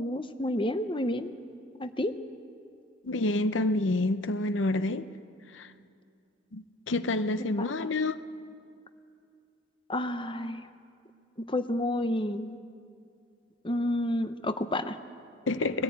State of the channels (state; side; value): normal; both; correlation 0.51